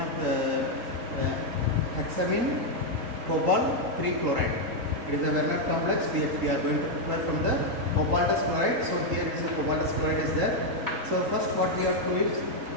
of hexamine cobalt 3 chloride. It is a Werner complex. We are going to prepare from the cobaltous chloride. So here is the cobaltous chloride is there. So first what we have to do is,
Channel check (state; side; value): late; left; 3.8 ms